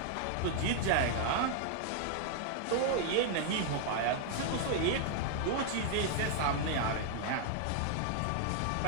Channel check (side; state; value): both; different; correlation 0.00